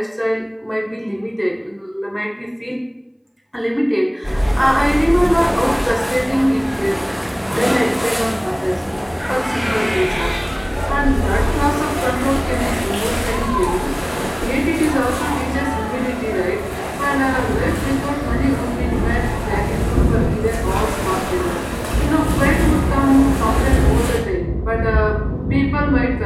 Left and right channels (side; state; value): both; identical; correlation 1.00